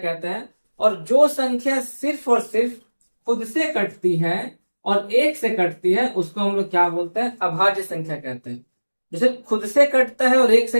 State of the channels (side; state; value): both; inverted; correlation -1.00